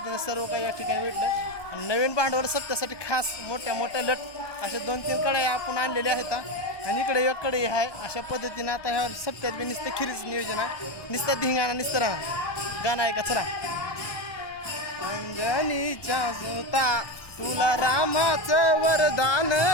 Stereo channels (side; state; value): right; late; 1.2 ms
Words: सर्व काही या ठिकाणी भेटलं. आणि नवीन भांडवल सत्यासाठी खास मोठ्या मोठ्या लट अशा 2-3 कढई आपण आणलेल्या आहेत. आणि इकडे एक कढई आहे. अशा पद्धतीने आता ह्या सप्त्यात बी नुसतं खिरीचं नियोजन आहे. नुसतं धिंगाणा नुसतं राहणार गाणं आहे का चला. अंजनीच्या सुता तुला रामाचं वरदान